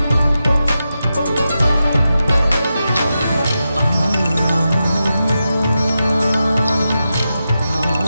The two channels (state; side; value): inverted; both; correlation -0.89